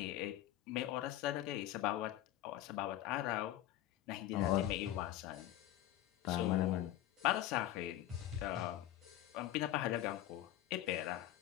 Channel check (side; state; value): right; quieter; 13.6 dB